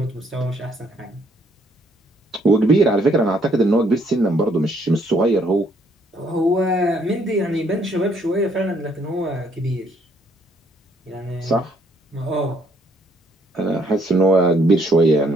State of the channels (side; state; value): both; normal; correlation 0.67